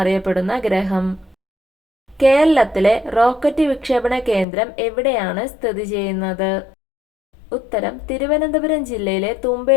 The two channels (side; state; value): right; drops out; at 4.5 s